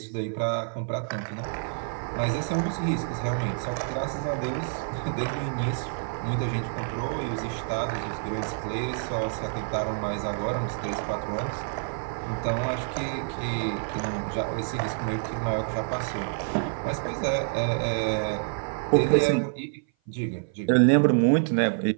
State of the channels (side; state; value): left; silent; 56 dB below the other